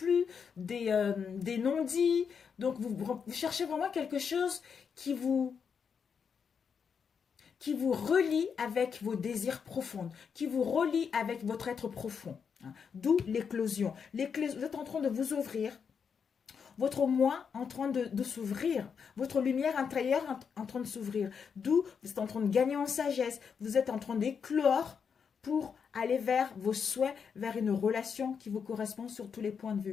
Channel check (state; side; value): quieter; right; 6.5 dB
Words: des non-dits. Donc, vous cherchez vraiment quelque chose qui vous relie avec vos désirs profonds, qui vous relie avec votre être profond. hein. D'où l'éclosion. Vous êtes en train de vous ouvrir. Votre moi en train de s'ouvrir. Votre lumière intérieure en train de s'ouvrir. D'où vous êtes en train de gagner en sagesse. Vous êtes en train d'éclore pour aller vers vos souhaits, vers une relation qui vous correspond sur tous les points de